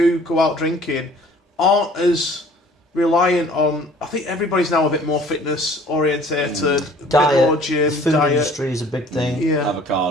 go out drinking aren't as reliant on... I think everybody's now a bit more fitness orientated, a bit more gym, the food industry is a big thing. Yeah.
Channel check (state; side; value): normal; both; correlation 0.53